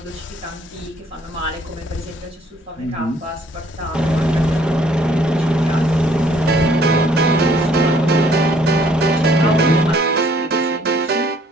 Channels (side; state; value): both; normal; correlation 0.62